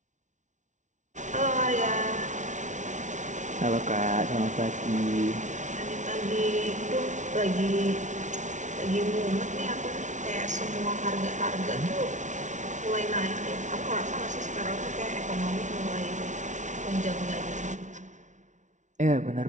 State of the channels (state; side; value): late; left; 0.36 ms